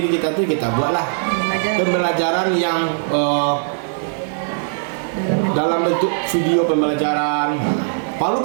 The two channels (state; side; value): silent; left; 66 dB below the other